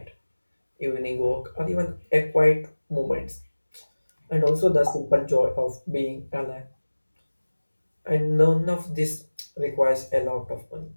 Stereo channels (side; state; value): both; inverted; correlation -1.00